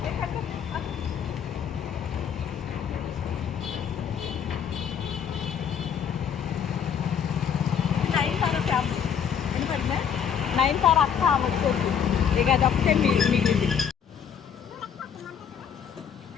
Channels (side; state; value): right; quieter; 7.8 dB